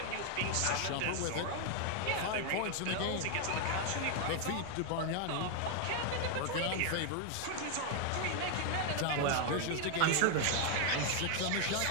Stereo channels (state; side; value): different; both; correlation 0.00